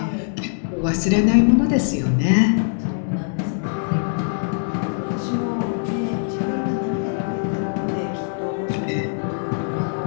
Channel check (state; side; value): silent; right; digital silence